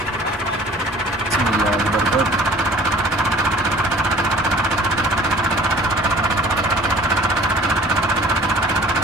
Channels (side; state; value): both; normal; correlation 0.49